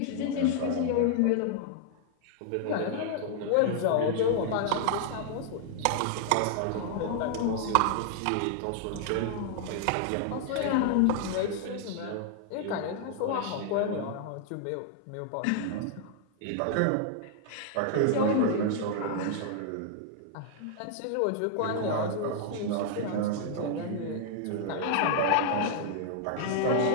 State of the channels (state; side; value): different; both; correlation -0.01